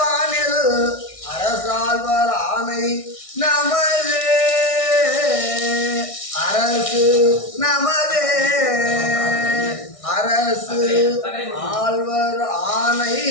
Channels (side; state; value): right; late; 1.6 ms